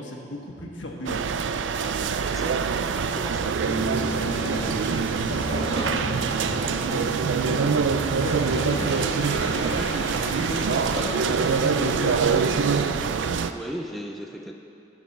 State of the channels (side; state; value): left; quieter; 4.4 dB